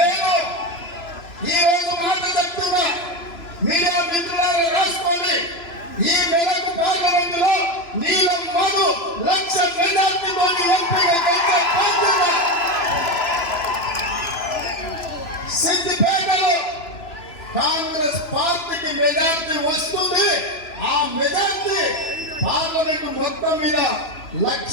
ఈ రోజు మాట చెప్తున్నా, మీడియా మిత్రులారా రాసుకోండి. ఈ మెదక్ పార్లమెంట్ లో నీలం మధు 1,00,000 మెజార్టీతో ఎంపీగా గెలిచే బాధ్యత. సిద్దిపేటలో కాంగ్రెస్ పార్టీకి మెజార్టీ వస్తుంది. ఆ మెజార్టీ పార్లమెంట్ మొత్తం మీద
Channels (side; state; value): right; late; 3.0 ms